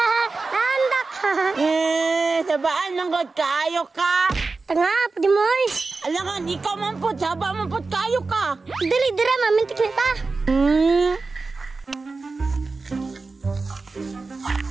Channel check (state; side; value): quieter; left; 3.9 dB